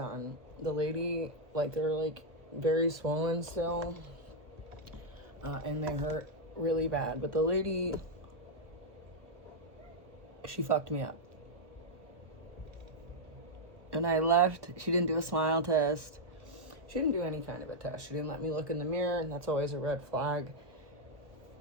The lady, like, they're like very swollen still, and they hurt really bad. But the lady, she fucked me up. And I left. She didn't do a smile test. She didn't do any kind of a test. She didn't let me look in the mirror, and that's always a red flag.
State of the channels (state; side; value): late; left; 1.2 ms